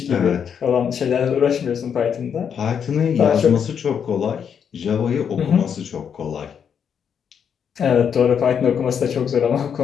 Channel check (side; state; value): right; quieter; 7.6 dB